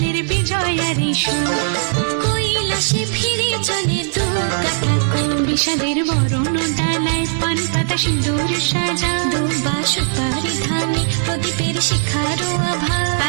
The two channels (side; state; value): left; silent; digital silence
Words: বিজয়ার সুর, কৈলাসে ফিরে চলে দুর্গা ঠাকুর। বিষাদের বরণ ডালায় পান পাতা সিঁদুর সাজা, দৌবা সুপারি ধানে প্রদীপের শিখারো আভা।